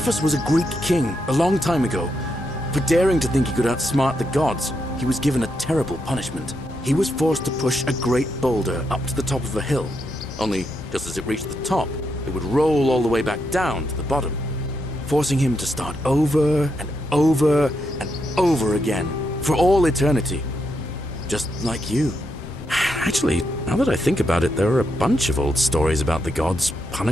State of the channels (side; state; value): both; normal; correlation 0.81